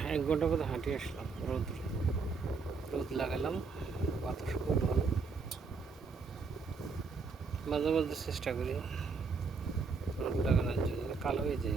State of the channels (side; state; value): left; quieter; 4.6 dB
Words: 1 ঘন্টা মতো হাঁটি আসলাম। রোদ লাগালাম, বাতাস খুব ভালো। মাঝে মাঝে চেষ্টা করি রোদ লাগানোর জন্য, কালো হয়ে যায়